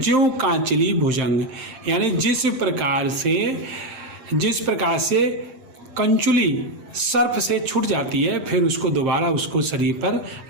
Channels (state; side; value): late; left; 8.7 ms